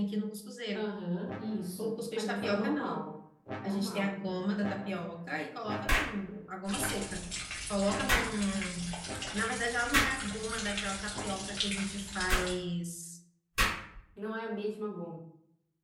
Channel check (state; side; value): identical; both; correlation 1.00